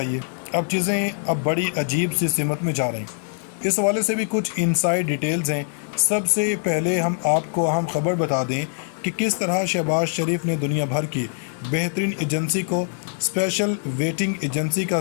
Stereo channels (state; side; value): silent; right; digital silence